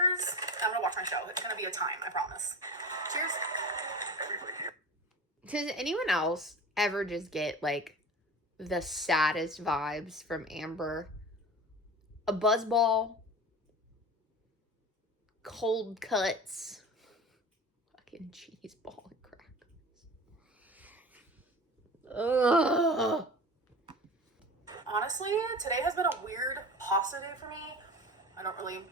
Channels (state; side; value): normal; both; correlation 0.35